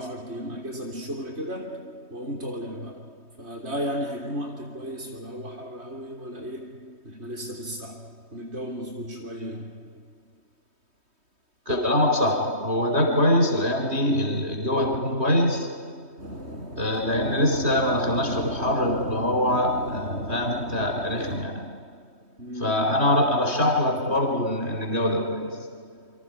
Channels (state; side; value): late; left; 3.2 ms